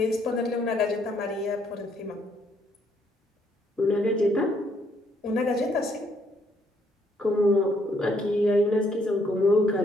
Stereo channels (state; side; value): normal; both; correlation 0.70